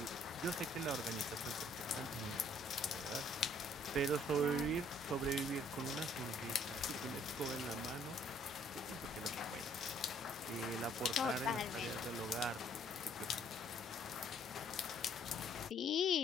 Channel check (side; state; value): both; normal; correlation 0.62